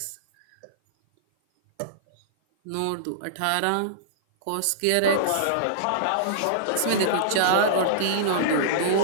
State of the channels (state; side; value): different; both; correlation -0.02